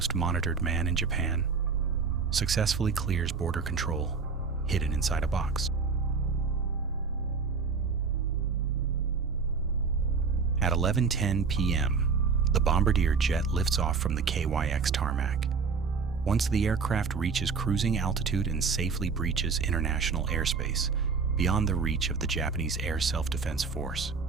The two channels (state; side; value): quieter; left; 5.3 dB